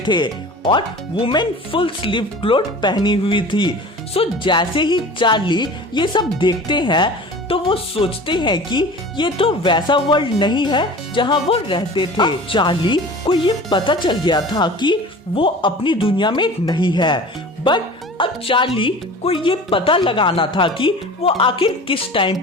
थे और वुमेन फुल स्लीव क्लोथ पहनी हुई थी। सो जैसे ही चार्ली ये सब देखते हैं तो वो सोचते हैं कि ये तो वैसा वर्ल्ड नहीं है जहाँ वो रहते थे। चार्ली को ये पता चल गया था कि वो अपनी दुनिया में नहीं है, बट अब चार्ली को ये पता लगाना था कि वो आखिर किस टाइम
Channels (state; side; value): normal; both; correlation 0.39